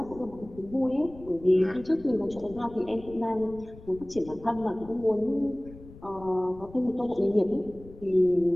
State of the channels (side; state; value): left; noise; rumble, 19 dB below the sound